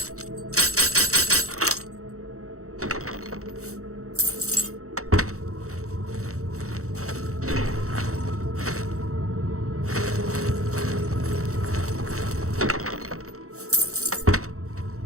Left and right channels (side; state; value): left; late; 0.64 ms